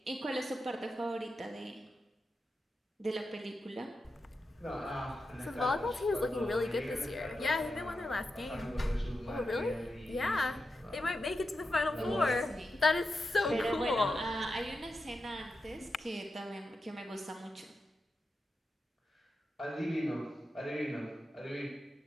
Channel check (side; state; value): both; normal; correlation 0.89